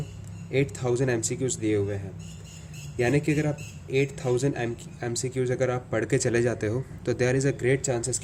8000 MCQs दिए हुए हैं। यानी कि अगर आप 8000 MCQs अगर आप पढ़ के चले जाते हो तो there is a great chances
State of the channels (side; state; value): both; identical; correlation 1.00